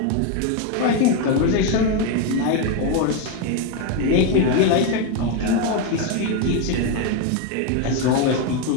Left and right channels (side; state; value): both; different; correlation 0.02